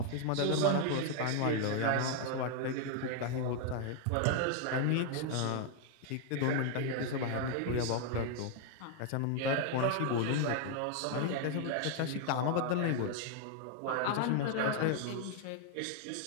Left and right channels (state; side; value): different; both; correlation 0.00